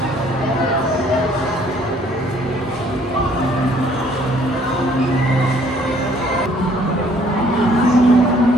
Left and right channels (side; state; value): both; normal; correlation 0.60